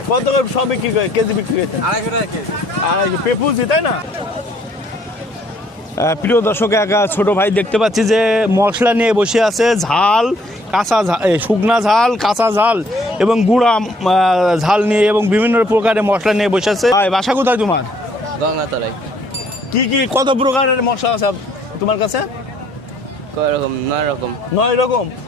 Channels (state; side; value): normal; both; correlation 0.63